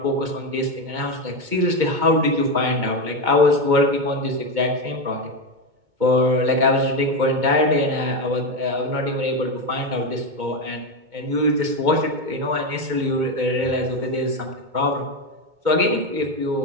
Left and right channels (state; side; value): late; left; 2.2 ms